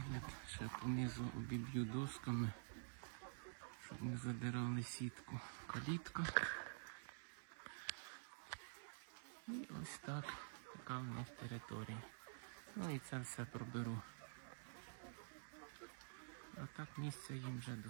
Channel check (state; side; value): silent; left; digital silence